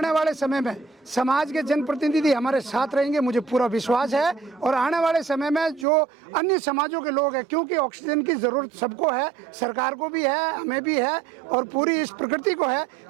वाले समय में समाज के जनप्रतिनिधि हमारे साथ रहेंगे, मुझे पूरा विश्वास है। और आने वाले समय में जो अन्य समाजों के लोग हैं, क्योंकि ऑक्सीजन की ज़रूरत सबको है, सरकार को भी है, हमें भी है और पूरी इस प्रकृति को है,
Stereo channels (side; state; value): left; drops out; at 5.9 s